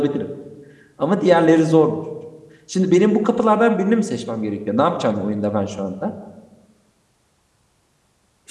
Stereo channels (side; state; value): both; identical; correlation 1.00